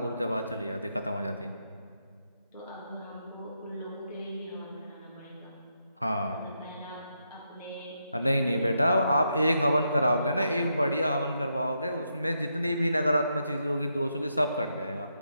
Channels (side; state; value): both; inverted; correlation -0.81